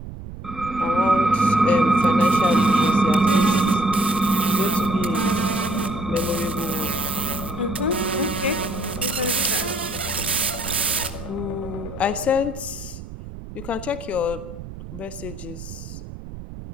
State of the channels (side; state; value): right; noise; rumble, 12 dB below the sound